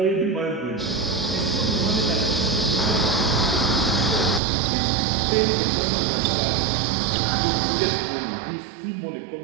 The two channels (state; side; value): drops out; left; at 4.4 s